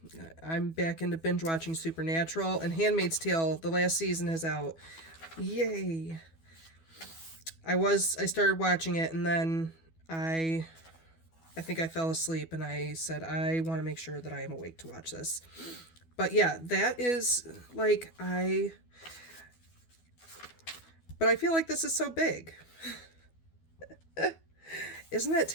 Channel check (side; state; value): right; late; 12 ms